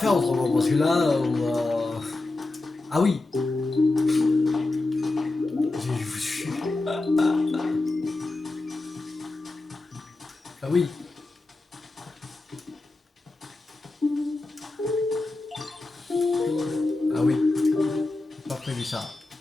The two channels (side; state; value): right; quieter; 3.1 dB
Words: autrement parce que là, on va... Ah oui. Ah oui. Ah oui. Pas prévu ça.